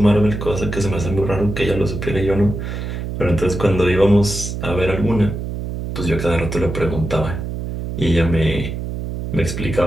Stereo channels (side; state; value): right; noise; hum, 5 dB below the sound